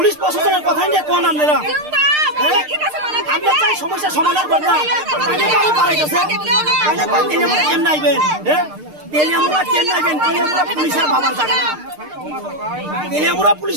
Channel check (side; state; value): left; late; 6.6 ms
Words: প্রশাসনের কথাই নিয়ে কোন আপনারা আমরা চাই সমস্যা সমাধান করতাম তাইনে কই পারে গেছে তাইনে কই তেলেমুরা কেমনে আইবেন হ্যাঁ তেলেমুরা কেমনে আইবেন তেলেমুরা পুলিশের বাবার জায়গা না তেলেমুরা